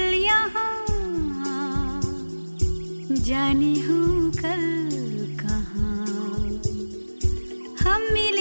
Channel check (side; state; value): both; inverted; correlation -1.00